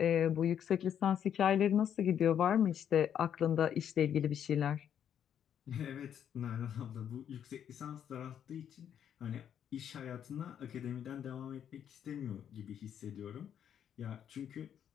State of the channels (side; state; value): right; quieter; 9.1 dB